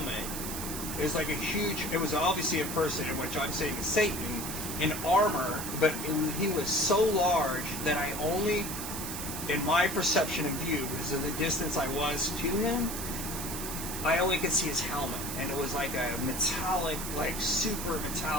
It was like it was obviously a person, in which I'm saying is Satan, in armor, but he was so large that I only, in my perception and view, because of the distance I was to him, I only could see his helmet. And it was like a metallic, like super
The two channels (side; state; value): right; noise; hiss, 6 dB below the sound